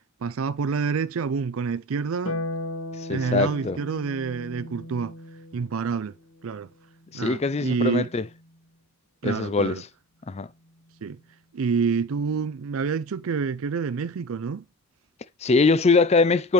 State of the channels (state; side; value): normal; both; correlation 0.33